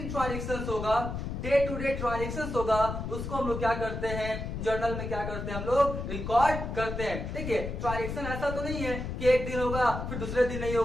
ट्रांजेक्शन होगा, डे टू डे ट्रांजेक्शन होगा, उसको हम लोग क्या करते हैं, जर्नल में क्या करते हैं, हम लोग रिकॉर्ड करते हैं। देखिए ट्रांजेक्शन ऐसा तो नहीं है कि एक दिन होगा फिर दूसरे दिन नहीं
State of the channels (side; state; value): left; noise; rumble, 5 dB below the sound